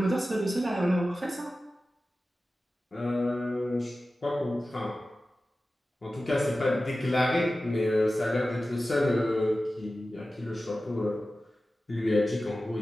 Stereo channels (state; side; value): normal; both; correlation 0.95